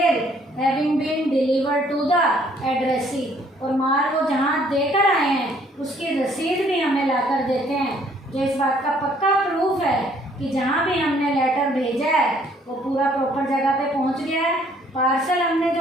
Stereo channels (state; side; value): normal; both; correlation 0.62